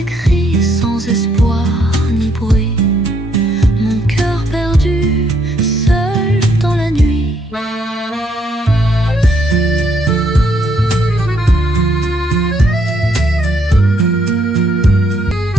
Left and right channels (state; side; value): normal; both; correlation 0.71